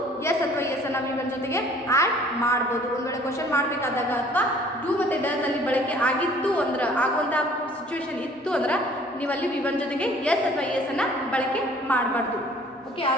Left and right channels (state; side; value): normal; both; correlation 0.54